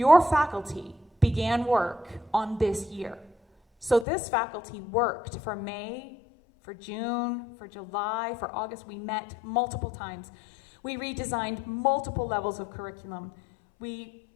faculty began work on this year. So this faculty worked for May, for June, for July, for August. We met multiple times. We redesigned multiple levels of curriculum. We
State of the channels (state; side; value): drops out; right; at 4.0 s